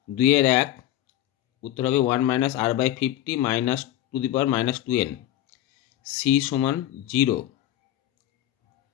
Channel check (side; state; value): right; quieter; 13.1 dB